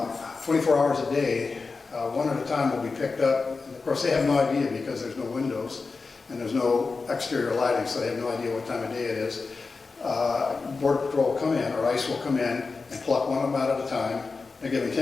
hours a day, one at a time will be picked up. And of course, they have no idea because there's no windows and there's no exterior lighting, so they have no idea what time of day it is. Border Patrol will come in, or ICE will come in and pluck one of them out at a time. They're given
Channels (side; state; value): right; quieter; 4.3 dB